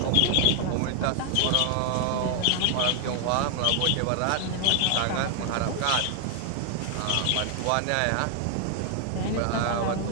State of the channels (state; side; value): different; both; correlation 0.00